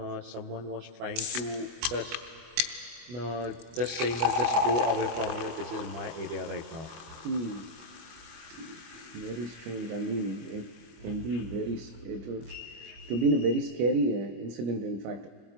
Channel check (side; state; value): left; late; 25 ms